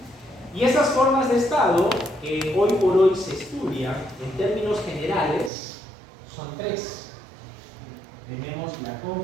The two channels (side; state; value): left; drops out; at 5.5 s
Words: Y esas formas de Estado que hoy por hoy se estudian en términos generales son tres. Tenemos la